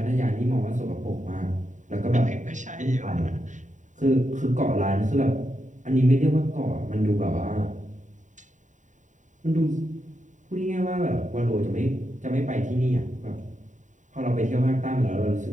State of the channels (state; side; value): late; left; 0.36 ms